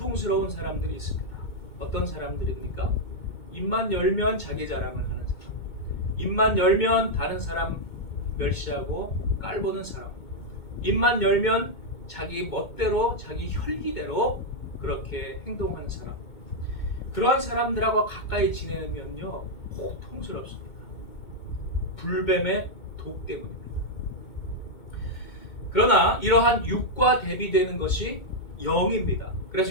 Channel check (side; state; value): right; late; 2.2 ms